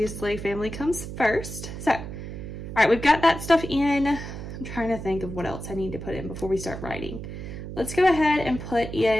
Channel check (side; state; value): right; noise; hum, 9 dB below the sound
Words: family comes first. So, all right, we've got that stuff in. I'm trying to think of what else I need to put in before we start writing. Let's go ahead and put